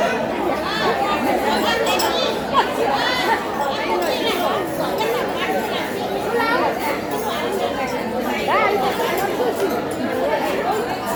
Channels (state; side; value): identical; both; correlation 1.00